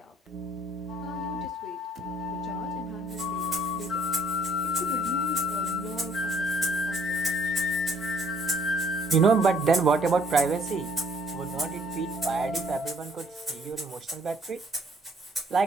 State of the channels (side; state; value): both; normal; correlation 0.62